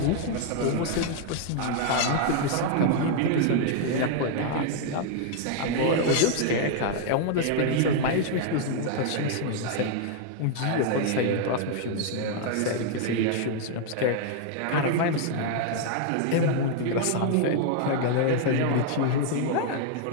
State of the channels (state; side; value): different; both; correlation 0.00